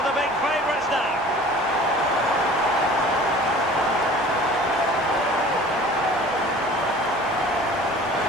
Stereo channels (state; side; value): normal; both; correlation 0.45